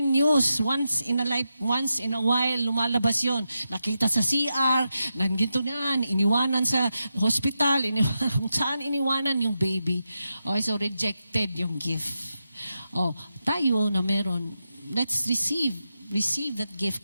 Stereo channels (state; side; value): inverted; both; correlation -0.88